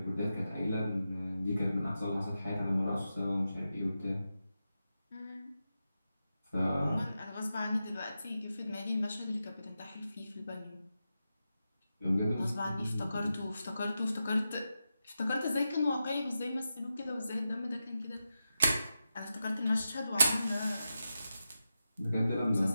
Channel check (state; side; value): inverted; both; correlation -0.90